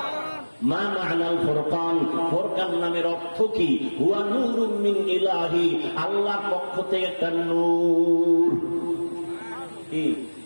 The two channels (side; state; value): both; inverted; correlation -1.00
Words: মা মা'নাল ফুরকান? ফুরকান নামের অর্থ কি? হুয়া নূরুম মিন ইলাহি, আল্লাহর পক্ষ থেকে একটা নূর। কি